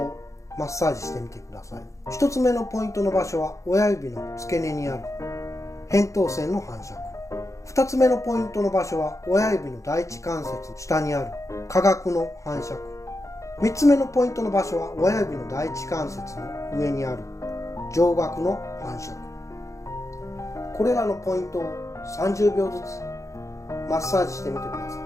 マッサージしてみてください。1つ目のポイントの場所は親指の付け根にある扁桃腺の反射区。2つ目のポイントの場所は親指の第一関節下にある下顎の反射区。3つ目のポイントの場所は親指の第一関節の上にある上顎の反射区。これらのポイントを30秒ずつマッサージしてみてくださ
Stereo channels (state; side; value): late; right; 0.15 ms